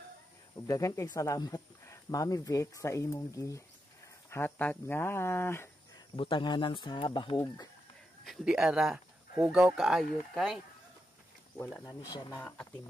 Ug daghan kay salamat Mami Vic sa imong hatag nga butanganan sa bahog. Di ara hugaw kaayo kay wala na ni siya na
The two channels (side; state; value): both; normal; correlation 0.85